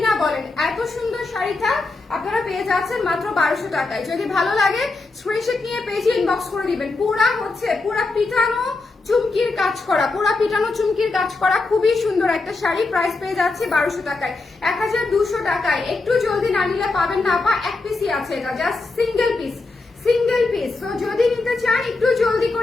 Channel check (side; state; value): right; quieter; 3.5 dB